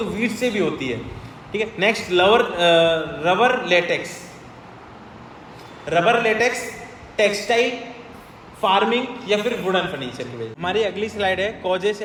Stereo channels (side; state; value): both; identical; correlation 1.00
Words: वीट से भी होती है। ठीक है, next rubber latex, textile, farming या फिर वुडन फर्नीचर की वजह। हमारी अगली स्लाइड है causes